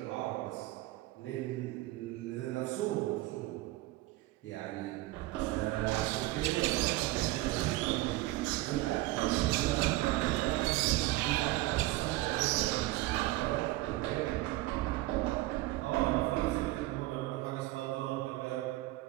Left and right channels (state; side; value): quieter; left; 18.6 dB